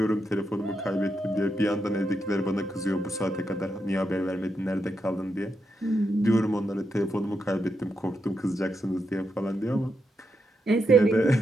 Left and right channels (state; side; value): normal; both; correlation 0.84